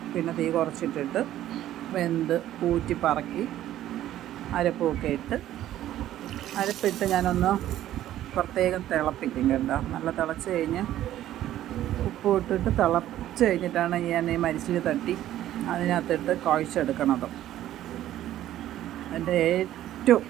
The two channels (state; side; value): quieter; left; 13.0 dB